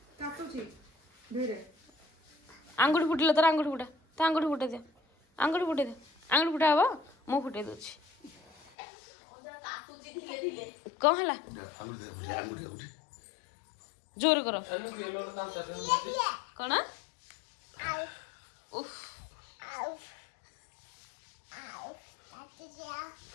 आंगुठी फुटिल तर आंगुठी फुटा तो आंगुठी फुटे दे आंगुठी फुटे दे आंगुठी फुटा हबो मु फुटे दोछि कौन हला जोर करो कौन उफ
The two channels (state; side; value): drops out; right; at 8.7 s